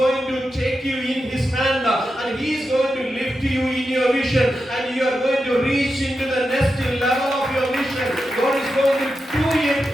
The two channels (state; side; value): normal; both; correlation 0.89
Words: to take you in His hand and He is going to lift you in your vision and you are going to reach into the next level of your vision. God is going to do it